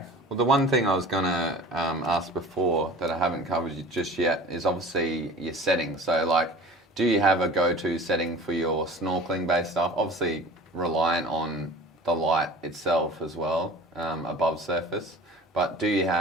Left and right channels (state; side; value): normal; both; correlation 0.41